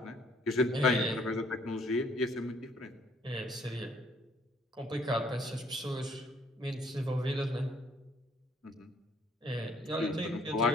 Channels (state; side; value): normal; both; correlation 0.63